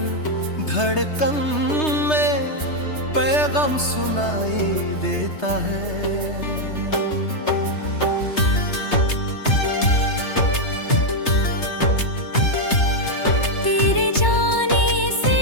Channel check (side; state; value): right; late; 3.3 ms